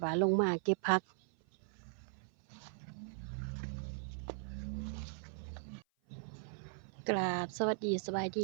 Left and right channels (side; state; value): left; silent; 52 dB below the other